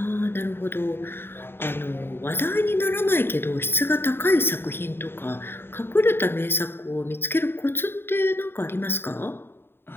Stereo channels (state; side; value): late; right; 0.11 ms